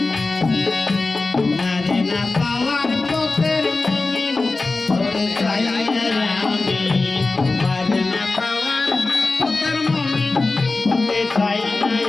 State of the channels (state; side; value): quieter; right; 3.5 dB